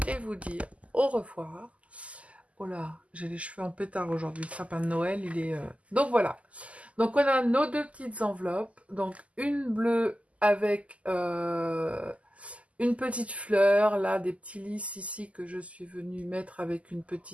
et vous dire au revoir. Oh là, j'ai les cheveux en pétard aujourd'hui, le sapin de Noël, il est... Donc, voilà. Donc, on a nos deux petites enveloppes. Donc, une bleue avec une petite fleur, là, des petits lys ici que je suis venue mettre avec une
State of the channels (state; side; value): late; left; 0.066 ms